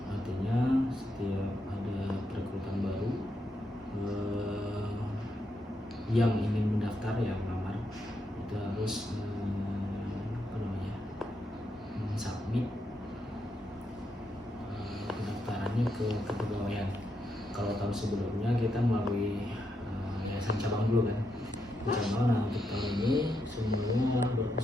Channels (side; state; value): both; normal; correlation 0.82